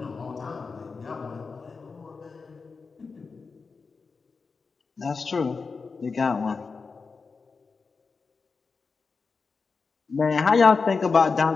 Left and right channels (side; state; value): right; quieter; 4.7 dB